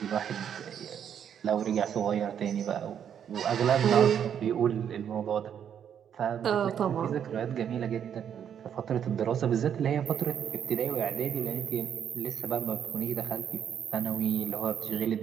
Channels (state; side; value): quieter; left; 8.7 dB